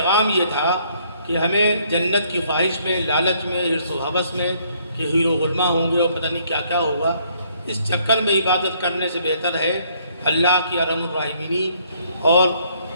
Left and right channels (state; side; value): inverted; both; correlation -0.67